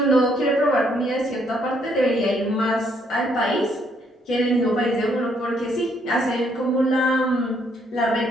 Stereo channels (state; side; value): normal; both; correlation 0.70